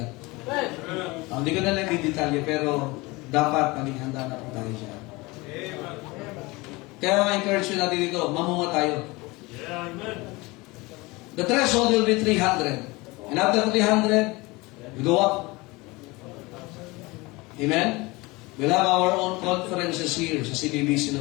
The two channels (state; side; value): quieter; right; 23.4 dB